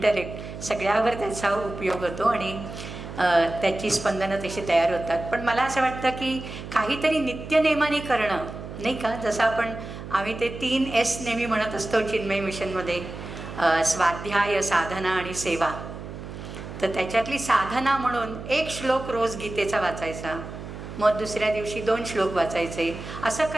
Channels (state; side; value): noise; right; hum, 10 dB below the sound